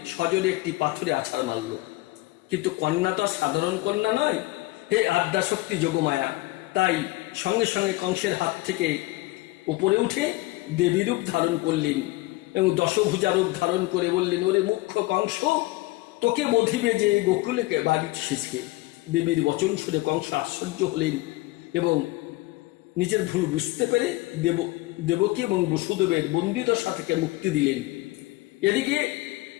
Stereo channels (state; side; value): quieter; right; 20.3 dB